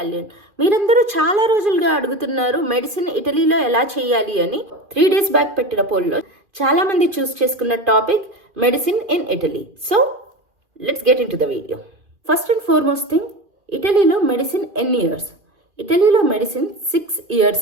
మీరందరూ చాలా రోజులుగా అడుగుతున్నారు మెడిసిన్ ఇటలీలో ఎలా చేయాలి అని. 3 days బ్యాక్ పెట్టిన పోల్లో చాలా మంది చూస్ చేసుకున్న topic medicine in Italy. So let's get in to the video. First and foremost thing, ఇటలీలో మెడిసిన్ ఎన్ని ఇయర్స్? ఇటలీలో మెడిసిన్ 6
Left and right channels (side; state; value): left; late; 2.4 ms